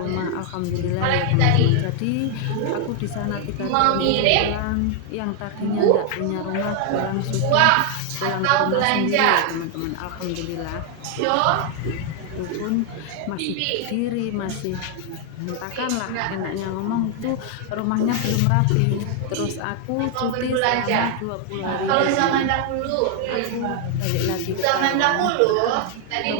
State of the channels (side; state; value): both; different; correlation 0.00